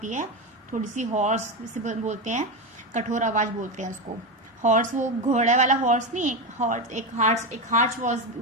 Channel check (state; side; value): normal; both; correlation 0.15